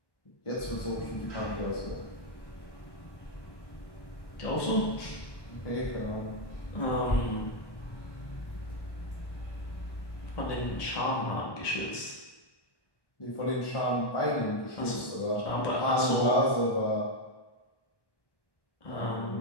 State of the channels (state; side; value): late; right; 1.1 ms